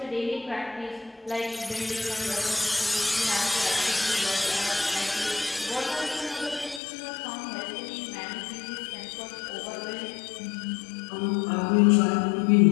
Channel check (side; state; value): right; drops out; at 6.8 s